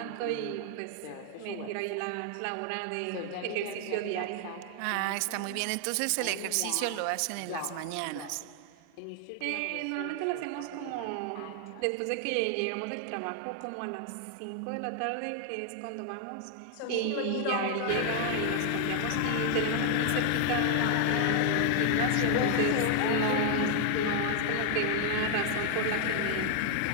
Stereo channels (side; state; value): both; different; correlation 0.00